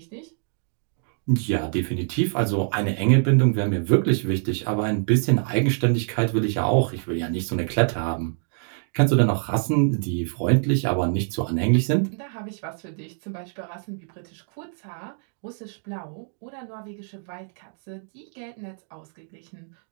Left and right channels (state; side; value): silent; left; 58 dB below the other